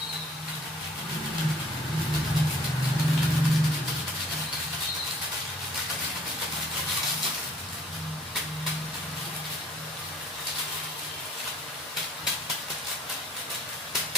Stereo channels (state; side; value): normal; both; correlation 0.57